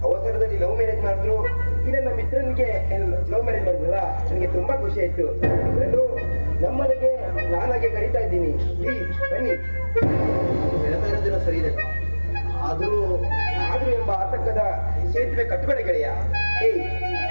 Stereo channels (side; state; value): both; inverted; correlation -1.00